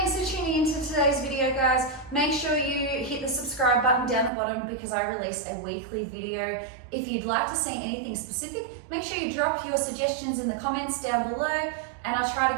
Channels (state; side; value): drops out; left; at 4.3 s